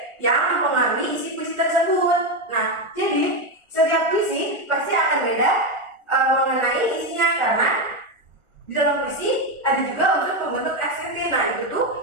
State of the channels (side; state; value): left; late; 1.4 ms